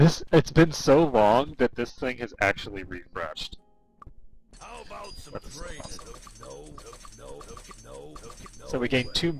been so long that this thing has actually refreshed. How about some That's training? awesome. No. So we gained 2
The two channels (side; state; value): both; identical; correlation 1.00